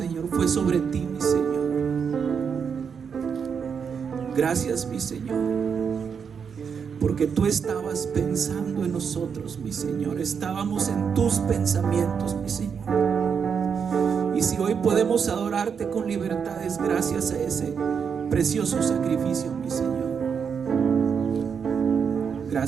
fue sobre ti, mi Señor. Gracias, mi Señor, porque tú estabas pensando en nosotros, mi Señor. Estábamos en tus pensamientos, mi Señor. Y si hoy podemos adorarte con libertad, es gracias a ese precioso sacrificio, mi Señor.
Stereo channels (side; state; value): left; quieter; 6.6 dB